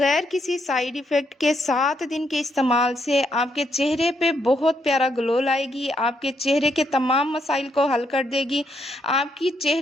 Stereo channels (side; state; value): both; normal; correlation 0.77